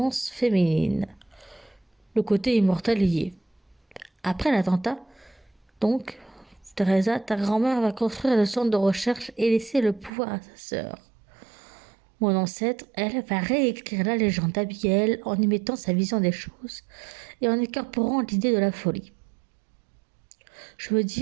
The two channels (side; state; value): left; drops out; at 10.1 s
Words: féminine. Le côté immortel y est. Après l'attentat, donc, Teresa, ta grand-mère va construire le centre de recherche et laisser le pouvoir à sa sœur. Mon ancêtre, elle, va réécrire la légende d'Abigail en y mettant sa vision des choses et en incorporant l'idée de la folie. Je veux